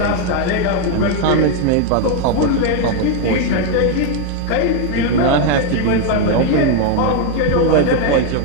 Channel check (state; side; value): different; both; correlation 0.01